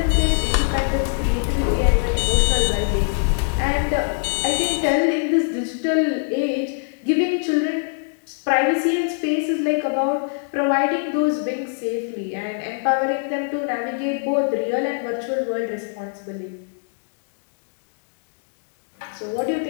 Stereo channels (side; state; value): right; silent; digital silence